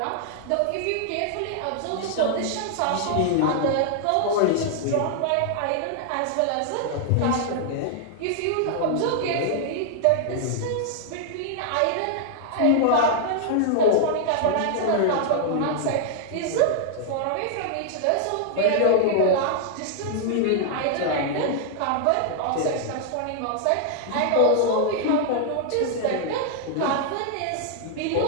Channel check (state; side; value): different; both; correlation -0.01